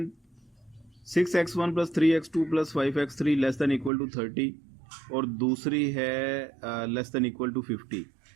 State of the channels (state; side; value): drops out; left; at 3.9 s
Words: 6x1 plus 3x2 plus 5x3 less than equal to 30 और दूसरी है लेस देन इक्वल टू 50।